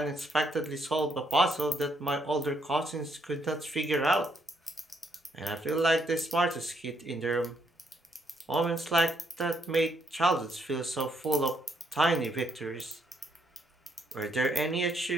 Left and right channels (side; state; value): both; normal; correlation 0.73